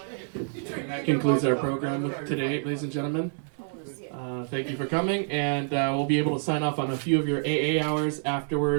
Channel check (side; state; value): left; silent; 60 dB below the other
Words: That concludes our program today, ladies and gentlemen. Thank you for coming, and we'll be able to sign off on a few of your AA hours